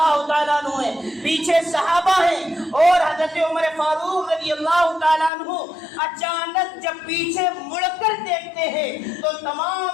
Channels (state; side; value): drops out; right; at 5.3 s